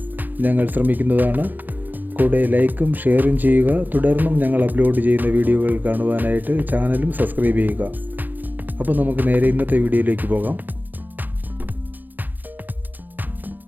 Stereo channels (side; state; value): left; late; 0.086 ms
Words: ഞങ്ങൾ ശ്രമിക്കുന്നതാണ്. കൂടെ ലൈക്കും ഷെയറും ചെയ്യുക. തുടർന്നും ഞങ്ങൾ അപ്ലോഡ് ചെയ്യുന്ന വീഡിയോകൾ കാണുവാനായിട്ട് ചാനലും സബ്സ്ക്രൈബ് ചെയ്യുക. അപ്പോൾ നമുക്ക് നേരെ ഇന്നത്തെ വീഡിയോയിലേക്ക് പോകാം.